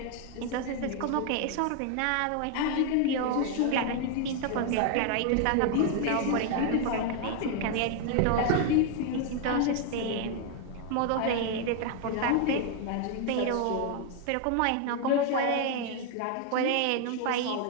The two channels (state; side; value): different; both; correlation 0.00